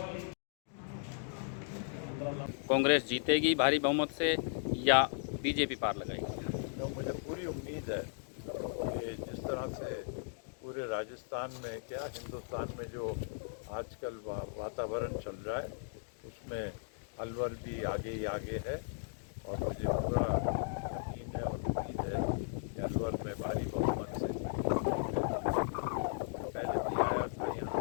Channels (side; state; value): right; silent; digital silence